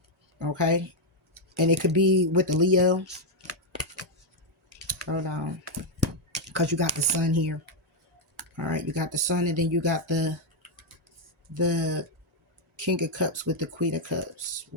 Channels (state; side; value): normal; both; correlation 0.01